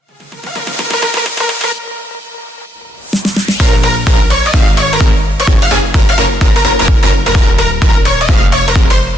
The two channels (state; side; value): normal; both; correlation 0.79